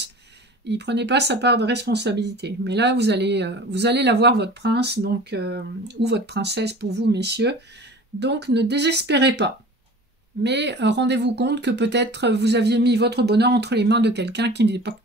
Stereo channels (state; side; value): normal; both; correlation 0.41